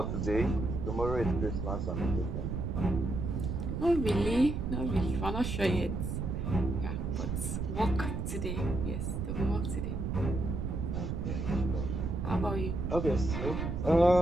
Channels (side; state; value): right; noise; rumble, 2 dB below the sound